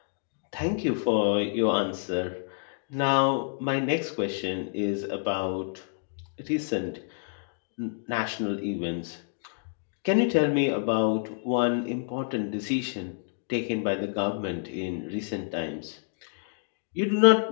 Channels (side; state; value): right; silent; digital silence